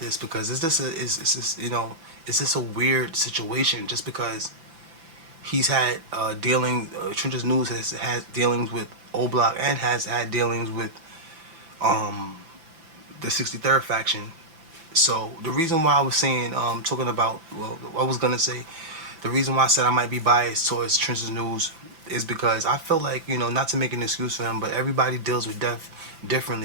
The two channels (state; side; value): late; left; 5.9 ms